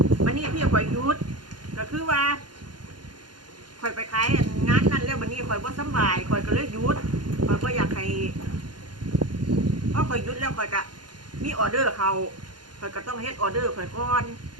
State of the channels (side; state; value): left; late; 0.71 ms